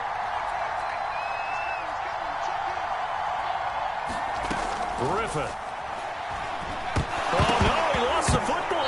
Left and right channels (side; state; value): both; identical; correlation 1.00